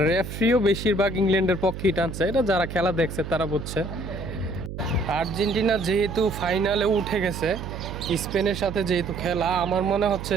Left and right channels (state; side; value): noise; right; hum, 8 dB below the sound